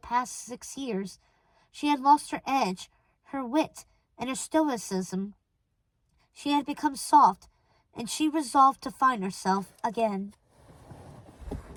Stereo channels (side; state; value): both; identical; correlation 1.00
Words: 6 years. She had lost her edge, her wit, and her stoicism. She had become soft, and she resolved to find herself again.